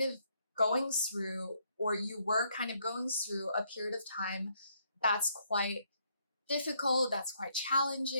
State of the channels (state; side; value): inverted; both; correlation -0.72